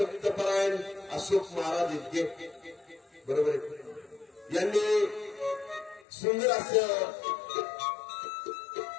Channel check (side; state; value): right; drops out; at 6.0 s